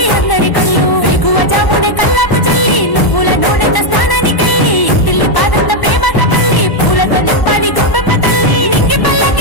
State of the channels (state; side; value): late; right; 1.0 ms